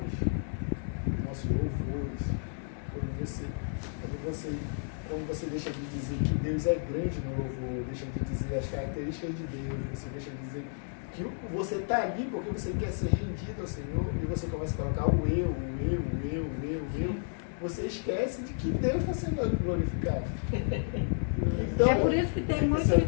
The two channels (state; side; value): silent; right; digital silence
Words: Quando você deixa de dizer que Deus é grande no louvor, deixa de dizer as características de Deus, você deixa de dizer que você está ali porque você quer ser rendido ao Senhor, e você começa a colocar o eu, você esquece de que Deus está sendo glorificado. Então, é por isso que tem